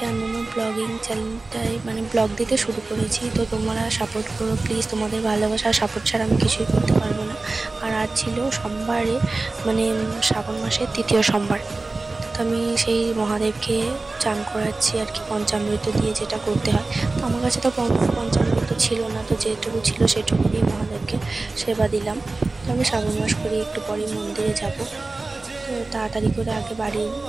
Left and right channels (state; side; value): quieter; left; 3.4 dB